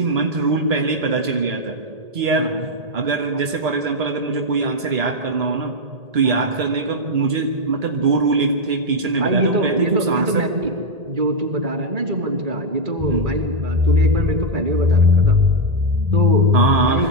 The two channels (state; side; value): late; left; 1.8 ms